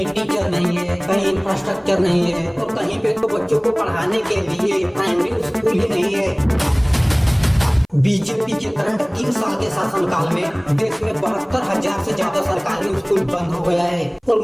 टीचर नहीं है, कहीं इंफ्रास्ट्रक्चर नहीं है और कहीं पे तो बच्चों को पढ़ाने के लिए प्राइमरी स्कूल ही नहीं है। बीजेपी के करंट 3 साल के शासनकाल में देश में 72,000 से ज्यादा सरकारी स्कूल बंद हो गया है और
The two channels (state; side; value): identical; both; correlation 1.00